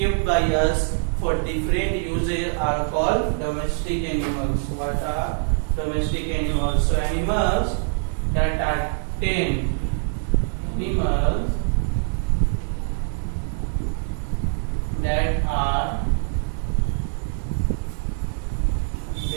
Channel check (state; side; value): silent; left; 63 dB below the other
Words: by us for different uses are called domestic animals. What are domestic animals? So animals that are tamed,